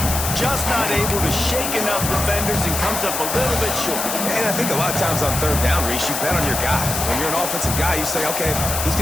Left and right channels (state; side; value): noise; left; hiss, 3 dB below the sound